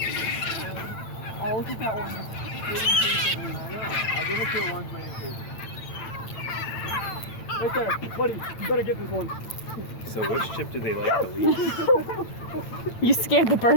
Oh, look at that one. I know. I'll give it to a one's waiting food. Right there, buddy. You better get this one. So which chip do they like the least? You scared the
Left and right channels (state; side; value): late; right; 8.9 ms